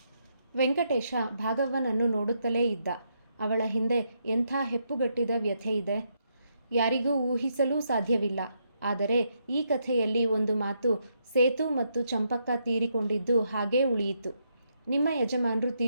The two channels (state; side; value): inverted; both; correlation -0.78